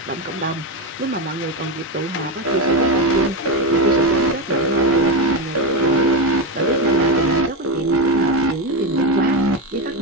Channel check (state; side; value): normal; both; correlation 0.12